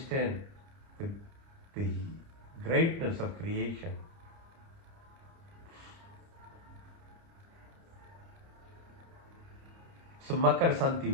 the, the greatness of creation. So Makar Santi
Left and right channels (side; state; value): left; late; 30 ms